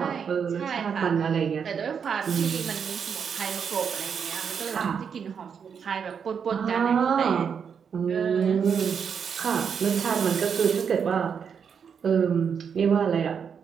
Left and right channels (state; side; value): quieter; left; 6.9 dB